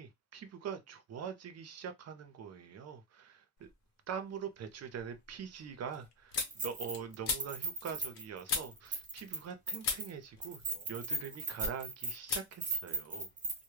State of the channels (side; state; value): both; normal; correlation -0.02